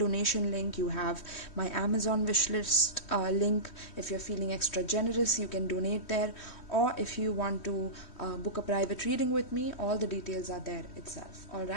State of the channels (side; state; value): right; late; 3.1 ms